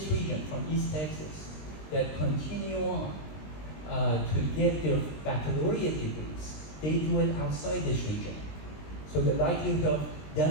region, from East Texas, that continue on to get their baccalaureate degrees, they do it outside this region. So the likelihood of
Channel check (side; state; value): right; late; 20 ms